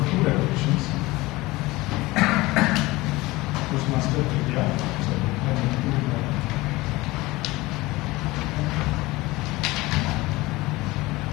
2 repetitions. Toastmaster India.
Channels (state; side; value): quieter; right; 20.4 dB